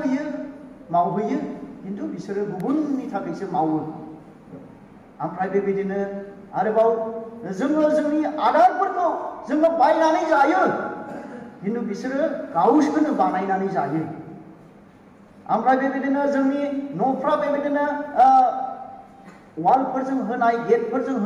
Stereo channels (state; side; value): identical; both; correlation 1.00